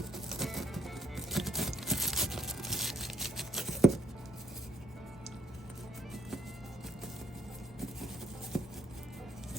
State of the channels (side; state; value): both; normal; correlation 0.67